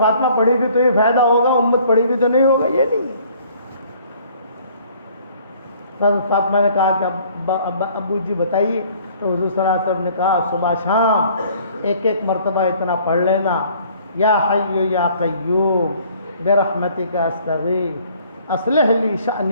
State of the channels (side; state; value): both; inverted; correlation -0.57